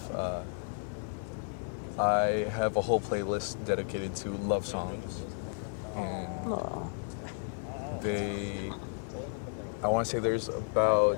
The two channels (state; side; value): silent; right; digital silence